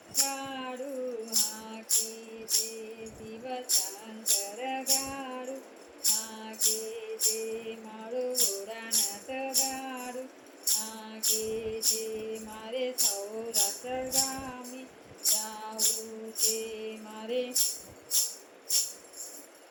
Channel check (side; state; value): both; identical; correlation 1.00